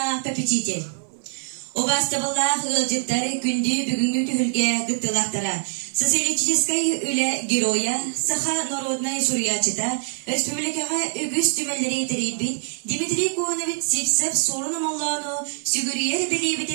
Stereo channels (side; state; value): left; silent; 59 dB below the other